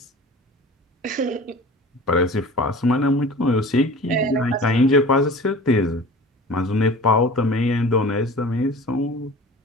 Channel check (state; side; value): normal; both; correlation 0.40